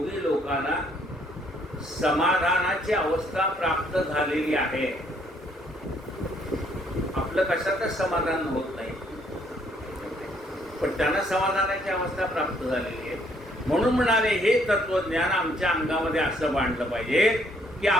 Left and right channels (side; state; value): both; normal; correlation 0.67